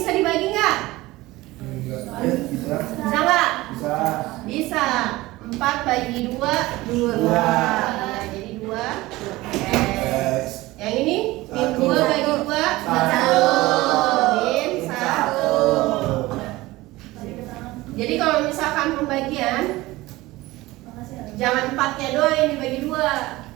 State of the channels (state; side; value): quieter; left; 19.2 dB